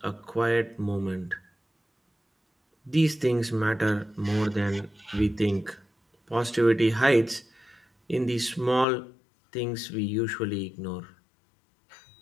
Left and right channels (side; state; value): right; drops out; at 8.8 s